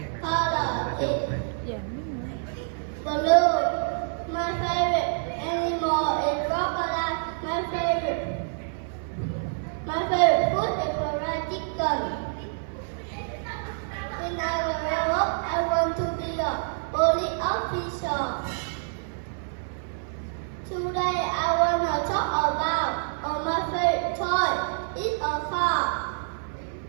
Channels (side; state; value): left; silent; 56 dB below the other